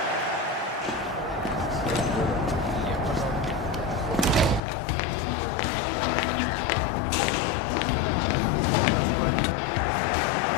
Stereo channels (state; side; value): drops out; right; at 4.6 s